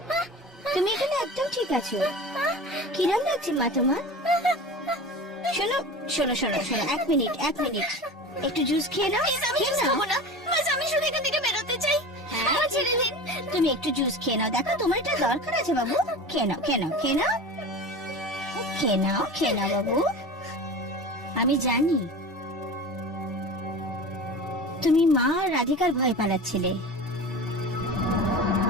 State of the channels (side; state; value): both; normal; correlation 0.33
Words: তুমি এখানে একদম ঠিক আছো। কিরম লাগছে মা তোমার? শোনো শোনো শোনো শোনো, এক মিনিট একটু জুস খেয়ে নাও। আমি শুধু এখান থেকে বেরোতে চাই। হ্যাঁ, ছেড়ে দিন। তুমি একটু জুস খেয়ে নাও, দেখো তোমার এটা দরকার আছে বাবু। খেয়ে নাও বাবু। আমি জানি তুমি মা আর রাধিকার ভয় পালাচ্ছিলে।